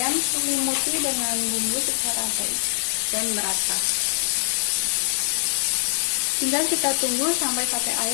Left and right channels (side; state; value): right; silent; digital silence